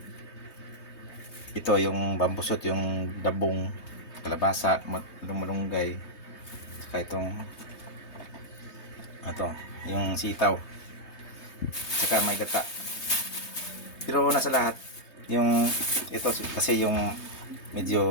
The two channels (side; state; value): right; late; 3.2 ms